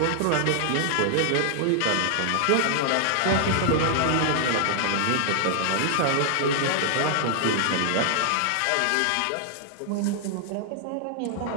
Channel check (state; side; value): different; both; correlation 0.00